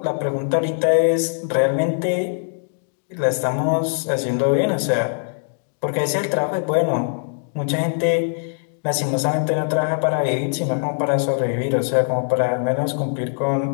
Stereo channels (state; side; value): silent; right; digital silence